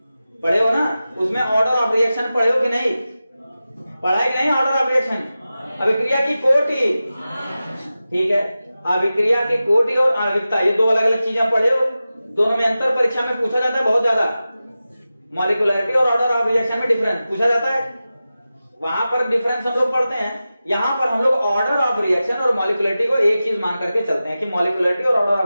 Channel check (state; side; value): inverted; both; correlation -0.94